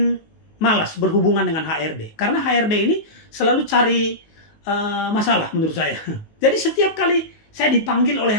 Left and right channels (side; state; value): right; late; 19 ms